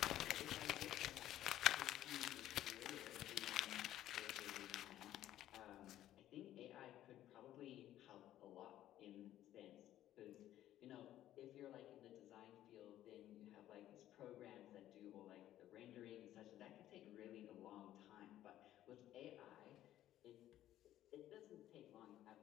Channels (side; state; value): right; quieter; 12.9 dB